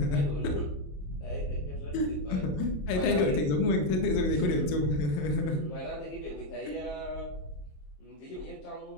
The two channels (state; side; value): late; right; 27 ms